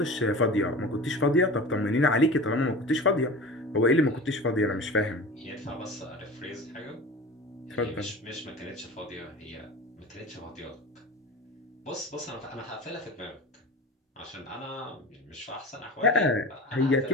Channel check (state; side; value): normal; both; correlation 0.34